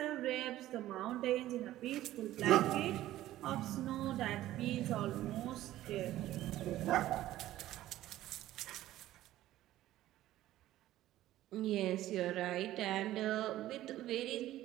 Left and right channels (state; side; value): quieter; left; 14.5 dB